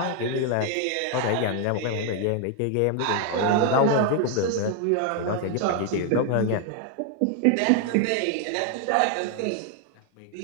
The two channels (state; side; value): different; both; correlation 0.01